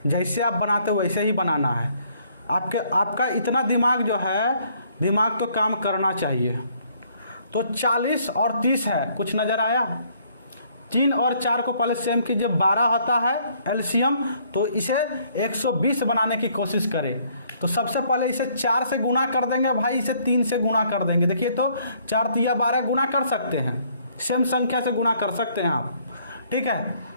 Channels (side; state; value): both; inverted; correlation -0.65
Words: जैसे आप बनाते वैसे ही बनाना है। आपका इतना दिमाग जो है, दिमाग तो काम करना चाहिए। तो 40 और 30 है, कुछ नज़र आया? 3 और 4 को पहले सेम कीजिए, 12 होता है एलसीएम, तो इसे 120 बनाने की कोशिश करें। तो सबसे पहले इसे 4 से गुना कर देंगे भाई, इसे 3 से गुना कर देंगे। देखिए तो 4 तिया 12 गुना कर सकते हैं, सेम संख्या से गुना कर सकते हैं आप, ठीक है।